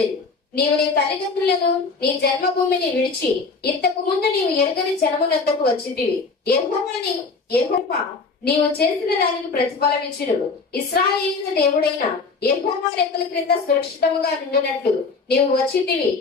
నీవు నీ తల్లిదండ్రులను నీ జన్మభూమిని విడిచి ఇంతకు ముందు నీవు ఎరుగని జనమునంతకు వచ్చితివి. యెహోవా నీవు చేసిన దానికి ప్రతిఫలం ఇచ్చును. ఇశ్రాయేలు దేవుడైన యెహోవా రెక్కల క్రింద సురక్షితముగా నుండినట్లు నీవు వచ్చితివి.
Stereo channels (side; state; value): right; quieter; 4.4 dB